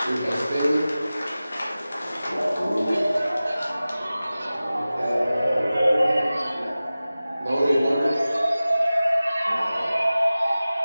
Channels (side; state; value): both; inverted; correlation -0.97